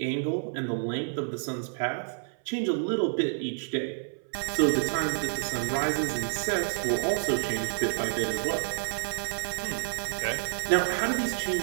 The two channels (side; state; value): left; silent; 59 dB below the other